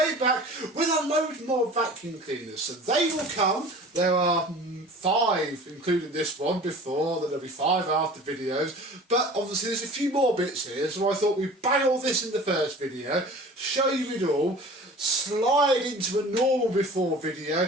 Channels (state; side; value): normal; both; correlation 0.42